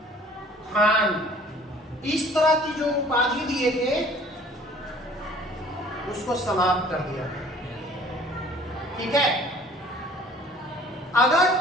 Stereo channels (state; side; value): normal; both; correlation 0.52